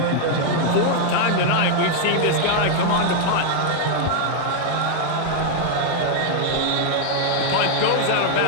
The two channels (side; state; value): both; different; correlation 0.00